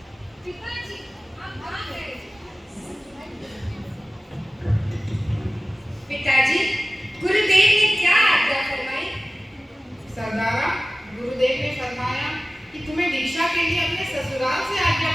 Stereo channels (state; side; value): normal; both; correlation 0.96